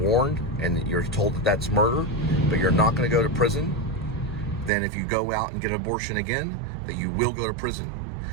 and you're told that that's murder, but you're not going to go to prison. Then if you go out and get an abortion again, that you will go to prison.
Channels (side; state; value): left; drops out; at 4.7 s